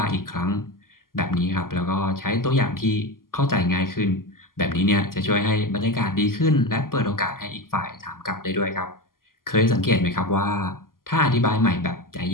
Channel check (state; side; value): late; right; 0.91 ms